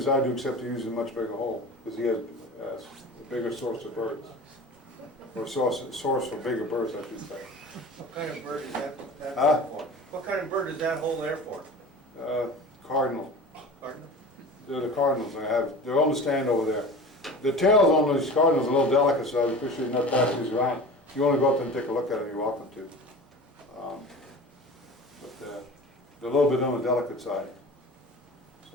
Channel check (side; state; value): both; normal; correlation 0.37